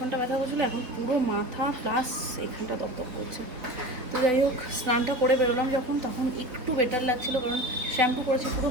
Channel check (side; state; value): left; late; 4.2 ms